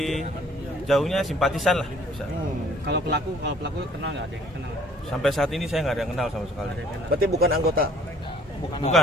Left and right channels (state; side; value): normal; both; correlation 0.58